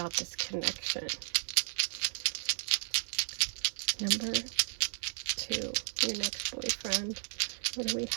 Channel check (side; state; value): left; silent; 55 dB below the other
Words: this connection. Number 2, your next boyfriend. What do we